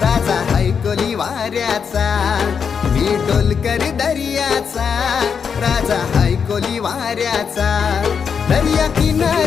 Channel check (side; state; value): right; quieter; 6.6 dB